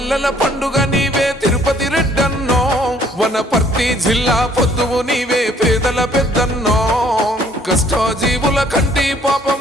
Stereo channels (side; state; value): both; normal; correlation 0.60